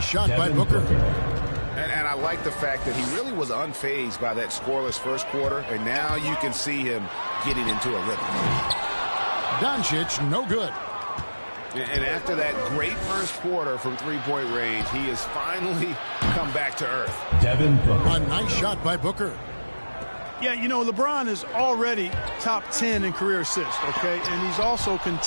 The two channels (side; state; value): both; inverted; correlation -1.00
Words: shot by Booker. And I like the fact that he really was unfazed by that scoreless first quarter, and now you can see him getting into a rhythm. Doncic, no good. And after that great first quarter from three-point range, he has finally come back to earth. Devin Booker. A nice shot by Booker. Yeah, you know, LeBron is already top 10 in career assists, okay? And he's also